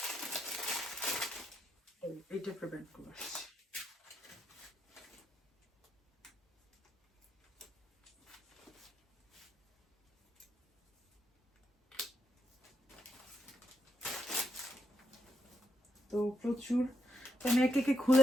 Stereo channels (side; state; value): both; normal; correlation 0.80